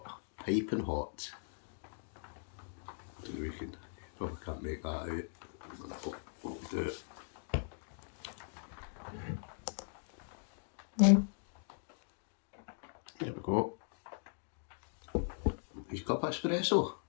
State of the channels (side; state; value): right; silent; digital silence